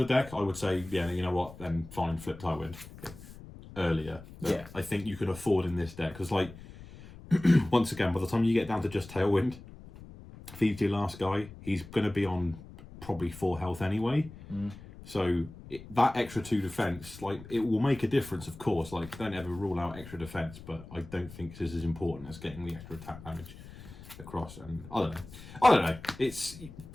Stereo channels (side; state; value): left; noise; rumble, 17 dB below the sound